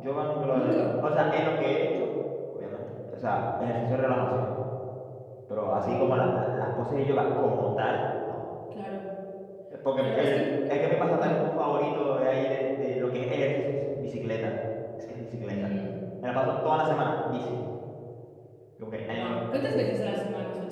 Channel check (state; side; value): identical; both; correlation 1.00